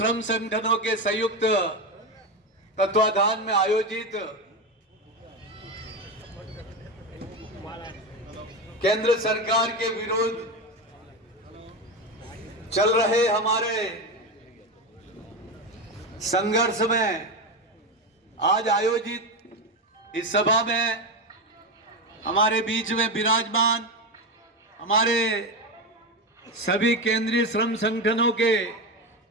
संगठनों के संयुक्त तत्वाधान में आयोजित केंद्र सरकार के विरोध चल रहे हमारे संघर्ष में आज आयोजित इस सभा में हमारे बीच में विराजमान हमारे सभी केंद्रीय श्रम संगठनों के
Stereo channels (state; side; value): normal; both; correlation 0.16